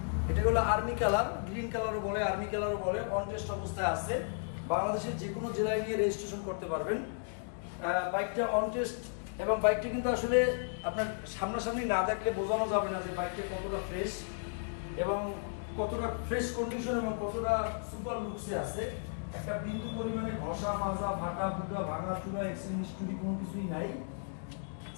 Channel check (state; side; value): silent; right; digital silence